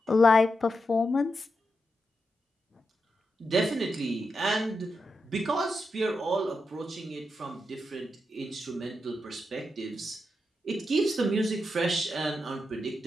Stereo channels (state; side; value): normal; both; correlation 0.86